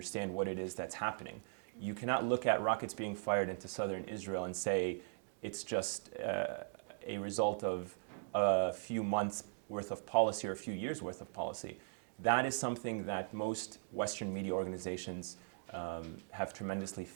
what it is that's happening. You cannot look at rockets being fired into southern Israel and say it's just a result of a few months worth of policy or a few years worth of policy. That is something that most Western media organizations have tremendously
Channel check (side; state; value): left; silent; digital silence